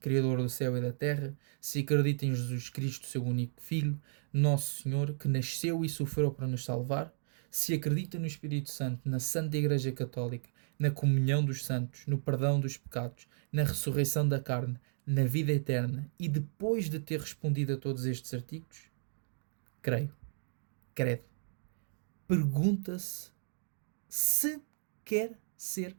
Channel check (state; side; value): silent; left; digital silence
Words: do céu e da terra, se acredita em Jesus Cristo, seu único Filho, nosso Senhor, que nasceu e sofreu para nos salvar, se acredita no Espírito Santo, na Santa Igreja Católica, na comunhão dos santos, no perdão dos pecados, na ressurreição da carne, na vida eterna, e depois de ter respondido a todos estes artigos, creio, credo, pergunta-se se quer ser